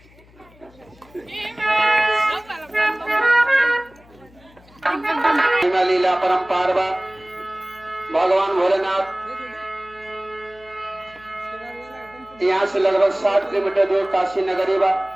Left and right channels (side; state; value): left; noise; hum, 27 dB below the sound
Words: लीला परम्पार भगवान भोलेनाथ यहाँ से लगभग 60 किलोमीटर दूर काशी नगरी बा,